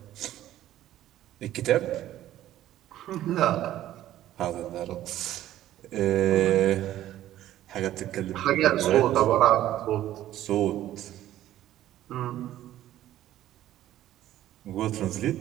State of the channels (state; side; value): quieter; left; 13.2 dB